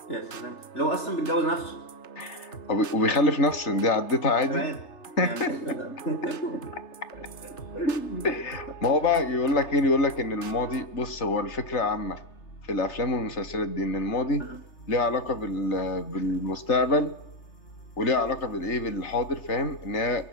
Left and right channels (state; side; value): late; right; 3.3 ms